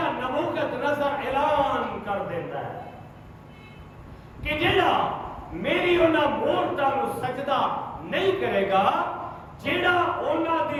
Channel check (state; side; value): identical; both; correlation 1.00